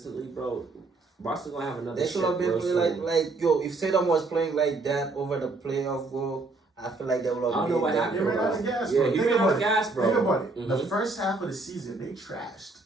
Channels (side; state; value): left; quieter; 3.5 dB